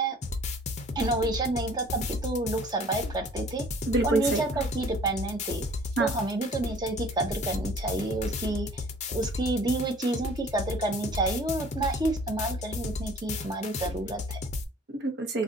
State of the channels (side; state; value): both; normal; correlation 0.52